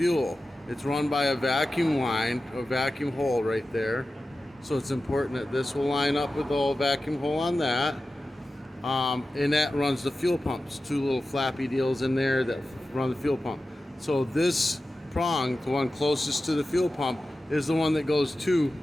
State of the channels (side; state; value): both; normal; correlation 0.94